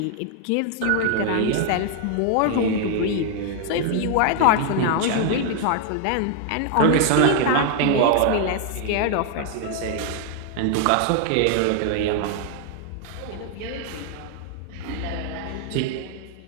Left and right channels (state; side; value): different; both; correlation 0.00